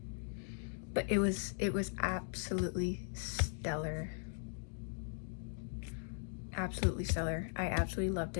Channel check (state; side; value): silent; right; digital silence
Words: But it was absolutely stellar. Absolutely stellar. I absolutely loved